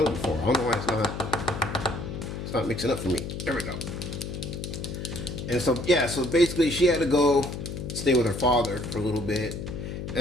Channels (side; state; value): left; noise; hum, 7 dB below the sound